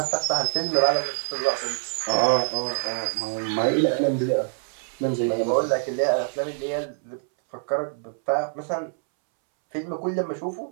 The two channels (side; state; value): left; silent; 62 dB below the other